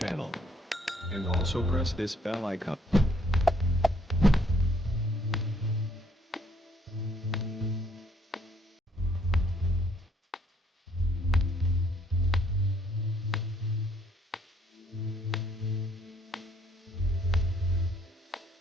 And also press this bell icon.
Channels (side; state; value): both; normal; correlation 0.66